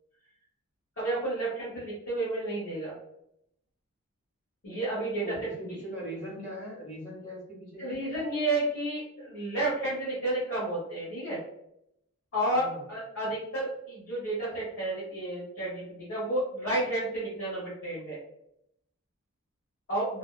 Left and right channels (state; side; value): normal; both; correlation 0.09